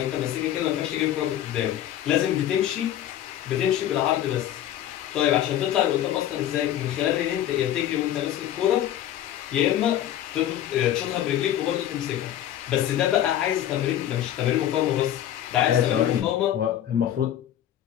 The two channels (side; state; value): right; quieter; 11.7 dB